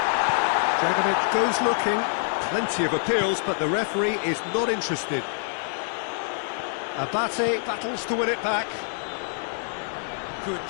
Dragovic goes looking. Plenty of appeals, but the referee is not interested. Abate battles to win it back. Good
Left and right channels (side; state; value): right; silent; 61 dB below the other